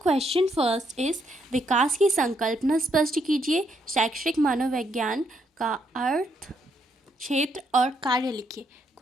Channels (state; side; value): normal; both; correlation 0.75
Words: क्वेश्चन फर्स्ट इज विकास की संकल्पना स्पष्ट कीजिए। शैक्षिक मनोविज्ञान का अर्थ, क्षेत्र और कार्य लिखिए।